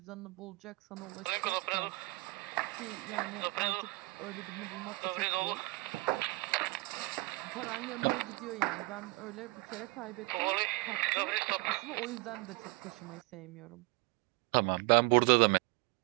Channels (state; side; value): quieter; left; 24.1 dB